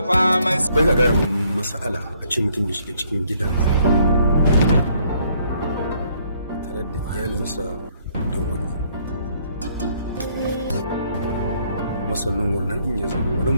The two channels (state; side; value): inverted; both; correlation -0.66